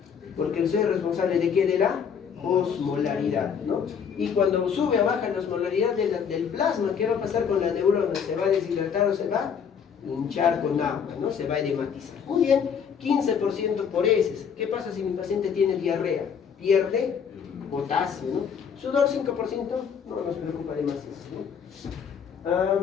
Porque el sodio es responsable de ¿qué? De la osmolaridad, ¿no? Y cuando sube o baja la osmolaridad del plasma, ¿qué va a pasar con la neurona? ¿Se va a deshidratar o se va a hinchar con agua, ¿no? Se va a edematizar. Muy bien, 15% por heces. ¿Qué pasa si mi paciente tiene diarrea? Pierde potasio, ¿no? Sudor 5%, no nos preocupa demasiado, ¿no?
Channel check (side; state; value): right; quieter; 7.1 dB